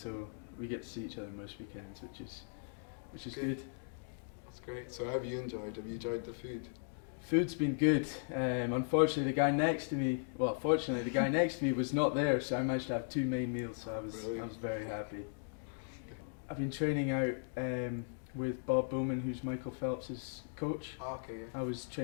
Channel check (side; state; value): right; silent; digital silence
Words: we get to see each other most weekends, which is good. That's great. So, how have you enjoyed? Have you enjoyed the food? Food's been good. Unfortunately, the guy next to me was not there, so I managed to have 2 main meals. So I was very happy. I've been training out with Bob Bowman, who's Michael Phelps' coach. Oh, okay. Yeah. I was